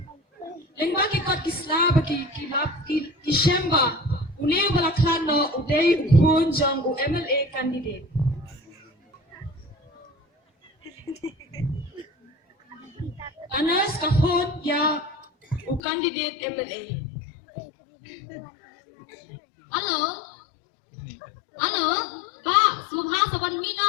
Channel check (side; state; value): right; drops out; at 15.8 s